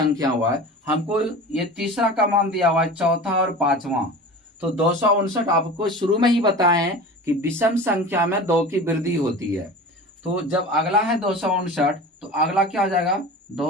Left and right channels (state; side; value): normal; both; correlation 0.35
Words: हुआ है, हमको ये तीसरा का मान दिया हुआ है, चौथा और 5वां। तो 259 आपको शुरू में ही बताए हैं कि विषम संख्या में 2 की वृद्धि होती है। तो जब अगला है 259 तो अगला क्या हो जाएगा